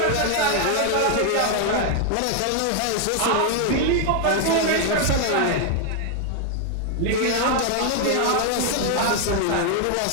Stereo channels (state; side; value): different; both; correlation 0.00